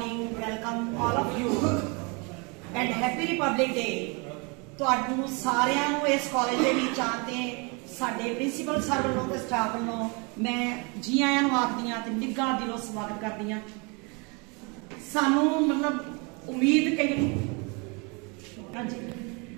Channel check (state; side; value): quieter; left; 31.1 dB